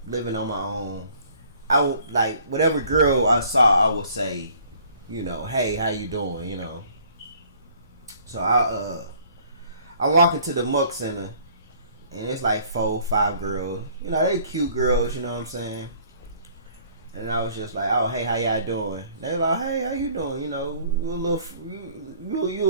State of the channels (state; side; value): inverted; both; correlation -0.57